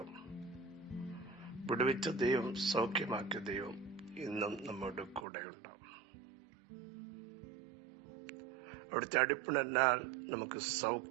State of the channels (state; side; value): drops out; left; at 5.2 s